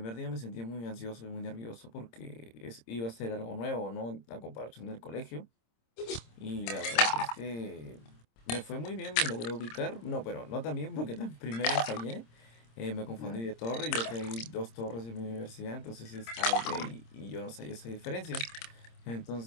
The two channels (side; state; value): right; late; 26 ms